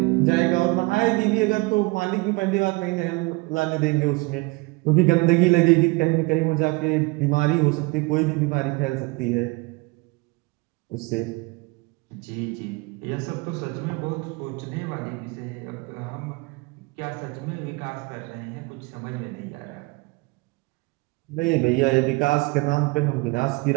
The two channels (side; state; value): left; quieter; 25.7 dB